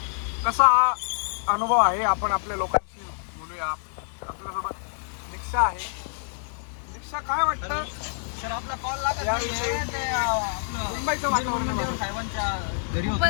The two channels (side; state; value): right; silent; 60 dB below the other